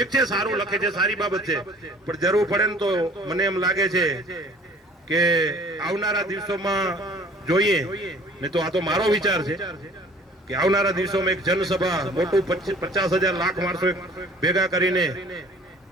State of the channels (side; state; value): both; normal; correlation 0.51